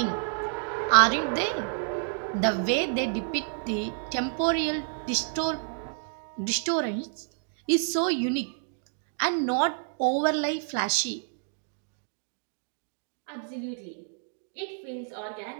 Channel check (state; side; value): silent; left; digital silence